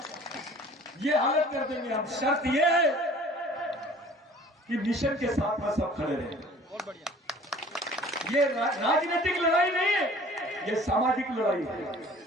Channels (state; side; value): normal; both; correlation 0.49